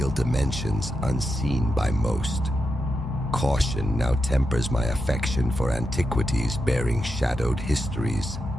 dimensions unseen by most. Caution now tempers my affection for antiquities bearing shadowed histories.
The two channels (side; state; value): both; normal; correlation 0.87